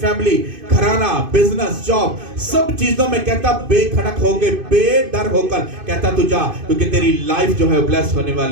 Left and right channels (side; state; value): left; late; 2.5 ms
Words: फैमिली, घराना, बिजनेस, जॉब, सब चीजों में कहता बेखड़क होकर, बेडर होकर कहता तू जा, क्योंकि तेरी लाइफ जो है ब्लेस होने